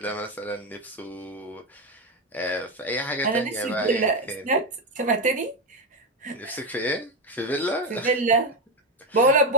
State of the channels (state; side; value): normal; both; correlation 0.09